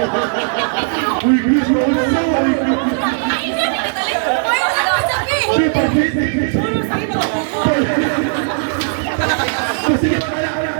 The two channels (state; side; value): silent; left; digital silence